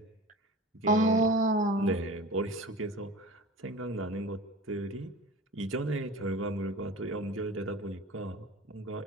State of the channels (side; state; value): both; normal; correlation 0.37